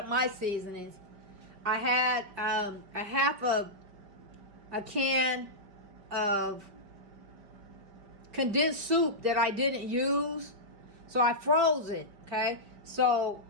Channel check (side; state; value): left; late; 4.9 ms